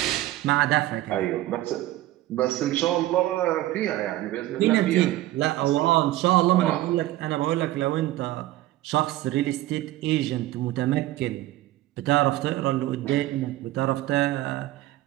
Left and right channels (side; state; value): left; quieter; 15.9 dB